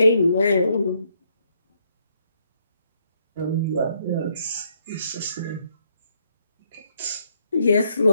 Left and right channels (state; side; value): inverted; both; correlation -0.73